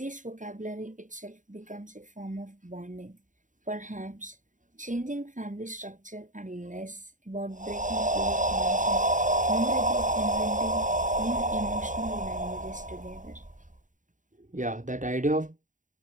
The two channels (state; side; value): late; left; 0.37 ms